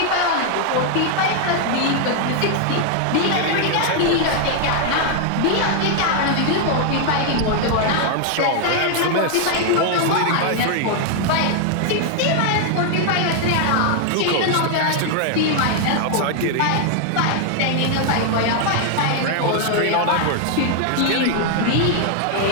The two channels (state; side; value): different; both; correlation 0.00